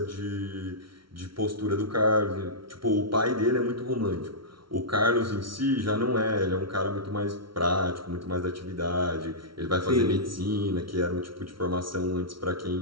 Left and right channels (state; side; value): late; left; 0.74 ms